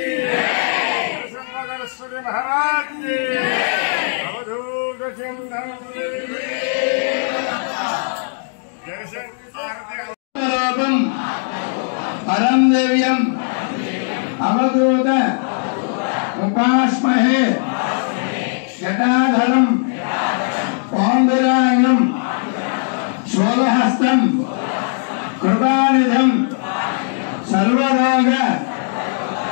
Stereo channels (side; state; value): right; silent; 67 dB below the other